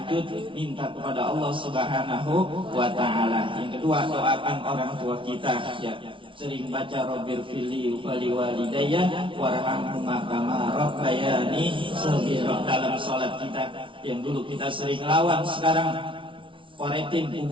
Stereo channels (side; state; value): left; late; 0.25 ms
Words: minta kepada Allah Subhanahu wa Ta'ala. Yang kedua, doakan orang tua kita. Ya, sering baca Rabbir fili wali walidayya warhamhuma kama rabbayani shaghira dalam sholat kita. Yang dulu kita sering lawan, sekarang koretin